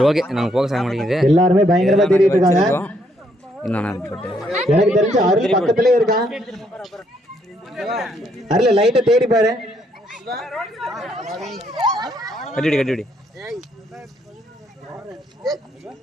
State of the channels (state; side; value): normal; both; correlation 0.72